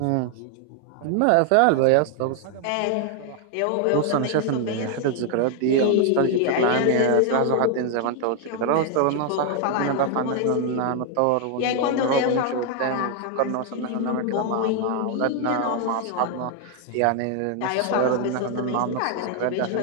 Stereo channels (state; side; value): different; both; correlation 0.00